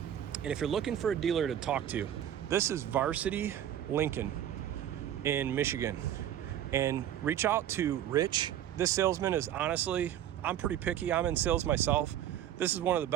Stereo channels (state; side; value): quieter; left; 10.9 dB